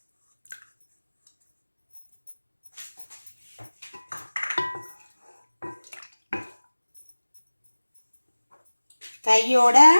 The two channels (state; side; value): inverted; both; correlation -1.00